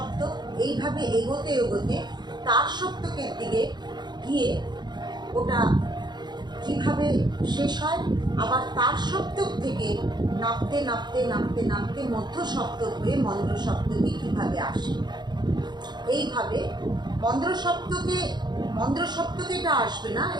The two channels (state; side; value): late; left; 0.21 ms